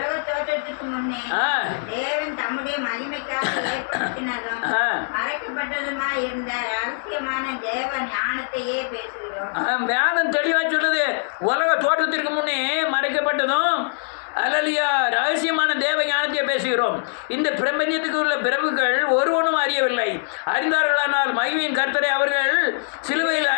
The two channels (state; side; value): silent; right; digital silence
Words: தோற்றத்துக்கு முன்னே ஆ. தேவன் தம்முடைய மகிமைக்காக ஏற்படுத்தினதும் மறைக்கப்பட்டதுமா இருந்த ரகசியமான தேவ ஞானத்தையே பேசுகிறோம். வேதம் தெளிவா சொல்லுது, உலக தோற்றத்திற்கு முன்னே மறைக்கப்பட்டதும் அல்லையா ரகசியமான தேவ ஞானத்தை பேசுகிறோம். இந்த பிரபஞ்சத்துக்கு உள்ள பிரபுக்கள் ஒருவனும் அறியவில்லை. அறிந்தார்களானால் மகிமையின் கர்த்தரை அவர்கள் சிலுவையில்